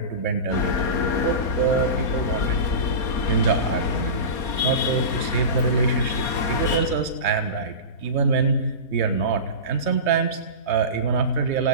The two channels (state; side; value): late; right; 4.3 ms